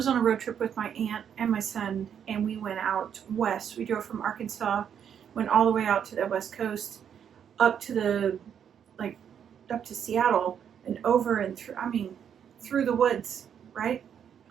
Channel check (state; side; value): quieter; left; 8.4 dB